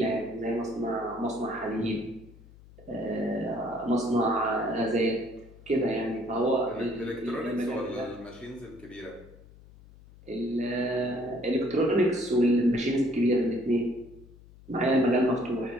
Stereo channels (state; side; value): noise; left; hum, 22 dB below the sound